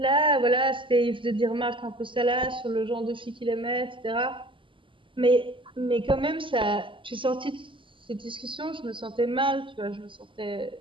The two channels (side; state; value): left; late; 0.25 ms